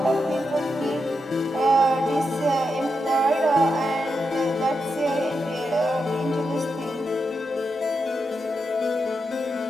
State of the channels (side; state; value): both; normal; correlation 0.85